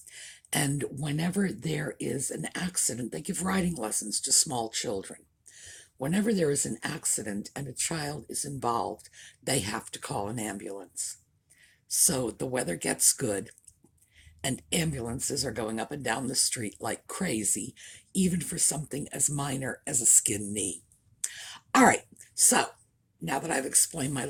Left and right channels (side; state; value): both; identical; correlation 1.00